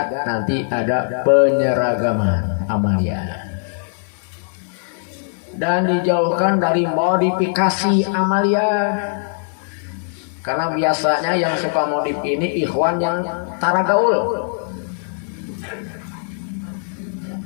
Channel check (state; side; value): silent; right; 58 dB below the other